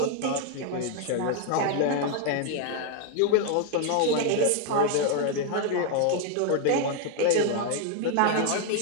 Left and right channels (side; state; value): both; different; correlation 0.00